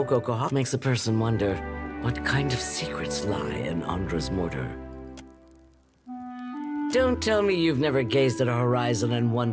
Kahara. Makes a person wonder what kind of secrets lie in Andra's mortar. Don't tell me you've never gazed at a horizon and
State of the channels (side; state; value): both; identical; correlation 1.00